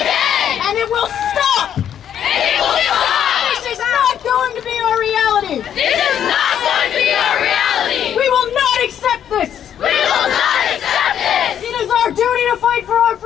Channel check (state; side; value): quieter; right; 9.5 dB